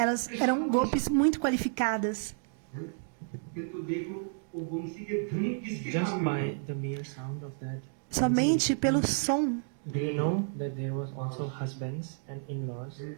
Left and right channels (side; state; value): left; silent; digital silence